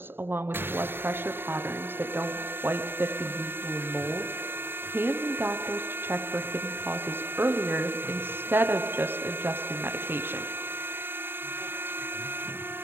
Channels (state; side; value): late; left; 0.11 ms